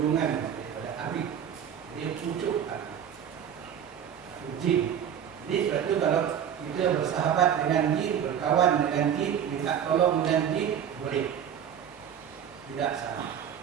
daripada api. Dia pucuk api. Jin. Jadi sebab itu kalau kita bersahabat dengan jin, berkawan dengan jin, minta tolong dengan jin, boleh. Tidak salah.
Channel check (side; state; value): left; quieter; 8.8 dB